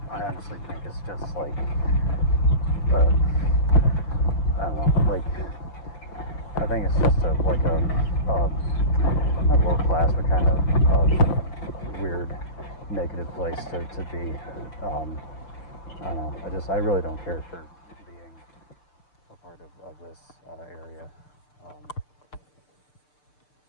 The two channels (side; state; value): right; late; 6.7 ms